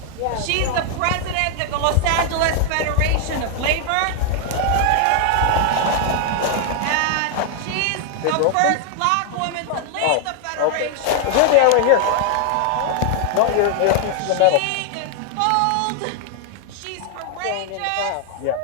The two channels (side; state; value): both; different; correlation 0.00